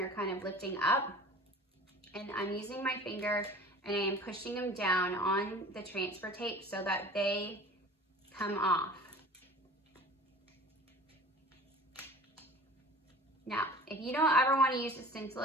kind of lifting up. And I'm using my finger and I am pushing them down on the transfer tape so that they come off. Now, if you don't ever want to use the stencil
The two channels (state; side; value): normal; both; correlation 0.42